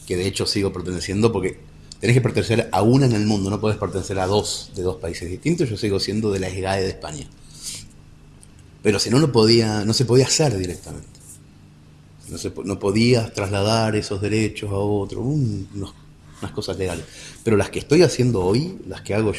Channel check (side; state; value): both; identical; correlation 1.00